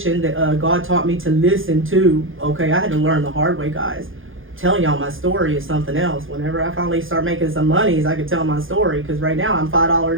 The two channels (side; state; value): left; late; 0.59 ms